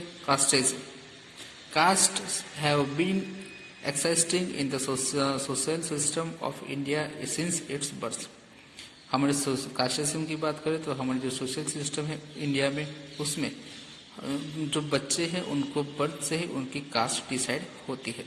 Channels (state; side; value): identical; both; correlation 1.00